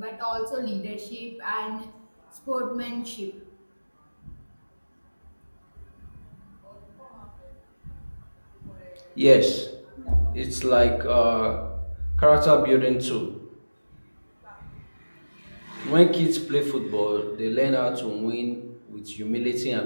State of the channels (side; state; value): both; inverted; correlation -1.00